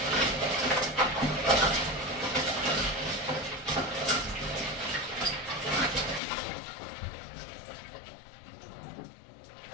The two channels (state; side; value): drops out; right; at 6.2 s